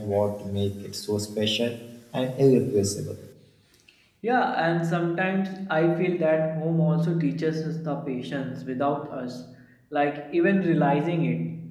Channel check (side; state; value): both; identical; correlation 1.00